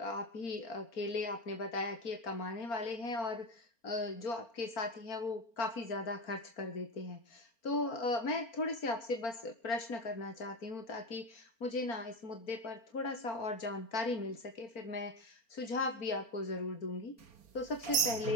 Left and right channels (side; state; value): right; late; 4.3 ms